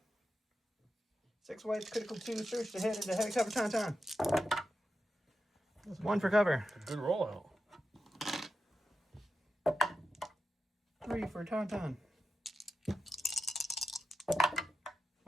6 white, critical 2, surge to hit into heavy cover tauntaun. 1 for cover. A good rollout. 3 for tauntaun.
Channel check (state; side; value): normal; both; correlation 0.89